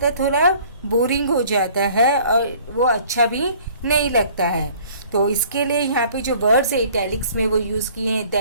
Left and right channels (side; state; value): both; inverted; correlation -0.54